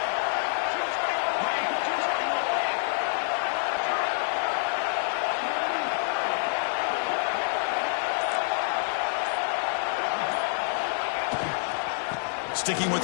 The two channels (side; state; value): right; silent; 60 dB below the other